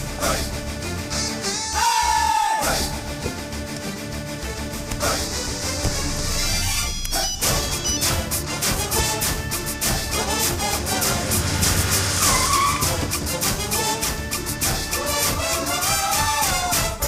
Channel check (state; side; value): identical; both; correlation 1.00